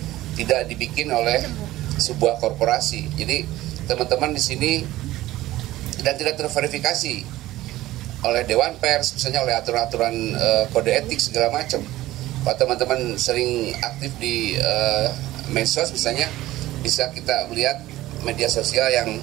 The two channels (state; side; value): quieter; left; 16.1 dB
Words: tidak dibikin oleh sebuah korporasi. Jadi teman-teman di sini, dan tidak terverifikasi oleh Dewan Pers, misalnya oleh aturan-aturan kode etik segala macam. Kalau teman-teman sering aktif di medsos misalnya, bisa kita melihat media sosial yang